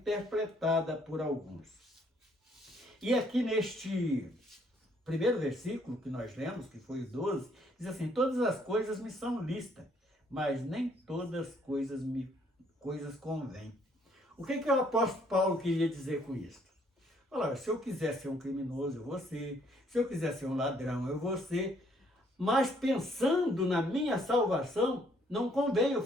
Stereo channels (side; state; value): both; normal; correlation 0.66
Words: por alguns. E aqui neste primeiro versículo que nós lemos, que foi o 12, diz assim: todas as coisas me são lícitas, mas nem todas as coisas convêm. O que o apóstolo Paulo queria dizer com isso? Olha, se eu quiser ser um criminoso, eu vou ser. Se eu quiser ser um ladrão, eu vou ser. Mas pensando na minha salvação, não convém eu